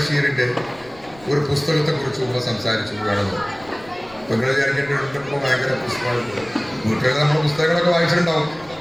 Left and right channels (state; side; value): noise; left; rumble, 24 dB below the sound